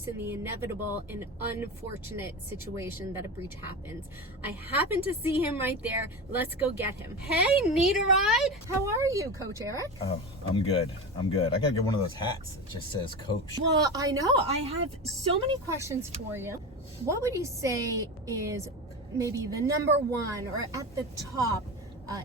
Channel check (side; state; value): both; normal; correlation 0.24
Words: in the inevitable and unfortunate situation that a breach happens. I happen to see him right there. Let's go get him. Hey, need a ride? How are you, Coach Eric? Oh, I'm good. I gotta get one of those hats that just says Coach. Well, I know. I have so many questions for you. What would you say is maybe the number one or at the top